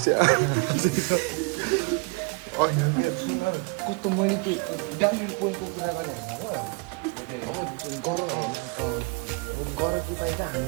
अनि सुन कस्तो मैले त्यो डाइनिङ पोइन्टको कुरा गरेँ अब गर कि पाइन्छ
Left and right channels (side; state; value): left; quieter; 30.8 dB